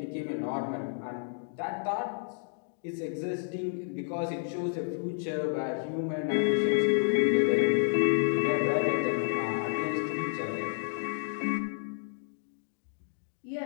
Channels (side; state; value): right; silent; digital silence